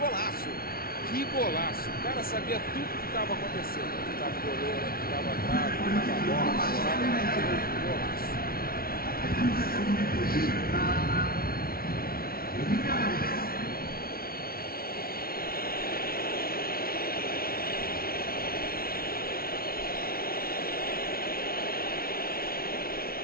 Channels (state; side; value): late; right; 0.44 ms